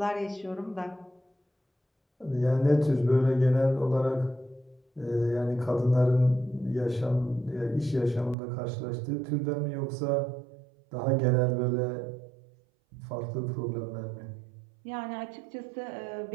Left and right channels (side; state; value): left; drops out; at 8.3 s